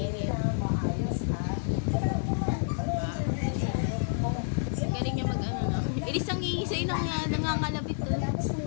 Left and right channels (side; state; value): right; silent; digital silence